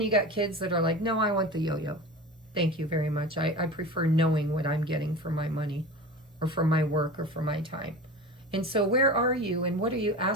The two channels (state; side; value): normal; both; correlation 0.33